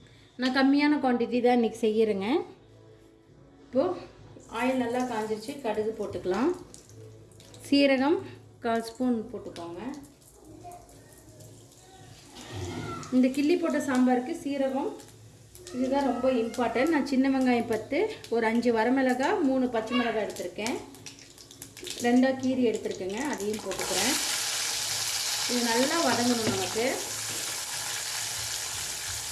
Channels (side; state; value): both; identical; correlation 1.00